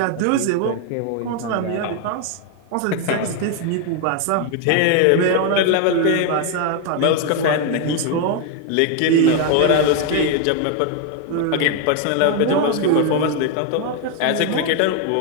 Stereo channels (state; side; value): different; both; correlation 0.01